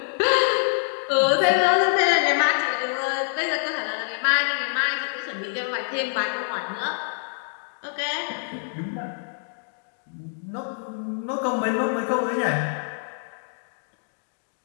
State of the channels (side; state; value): right; silent; digital silence